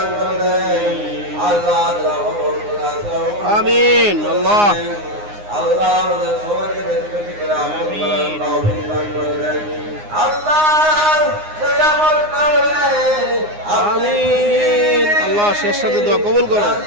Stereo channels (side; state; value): left; late; 9.7 ms